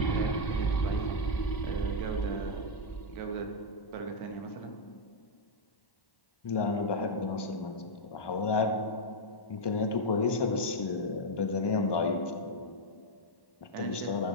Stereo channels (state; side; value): late; right; 1.2 ms